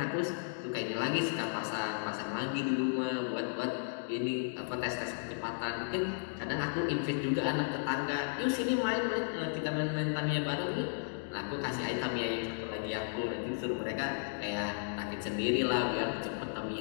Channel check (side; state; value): right; silent; digital silence